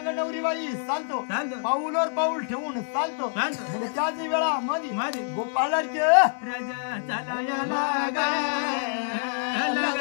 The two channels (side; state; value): right; silent; 61 dB below the other